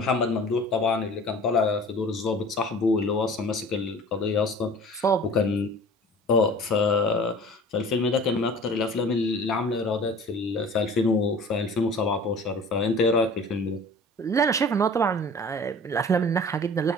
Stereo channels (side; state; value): both; normal; correlation 0.44